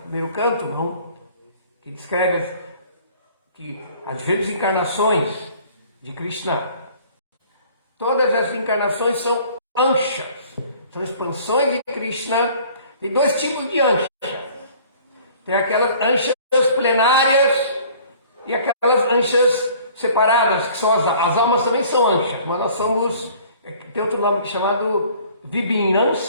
primeiro canto, não? Que descreve que as diferentes encarnações de Krishna, todas as encarnações são anshas, são expansões de Krishna. Tem dois tipos de anshas. Tem aquelas anshas plenárias e aquelas anshas separadas, que são as almas também são anshas, mas nós somos, tem outro nome chamado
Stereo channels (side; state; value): both; inverted; correlation -0.52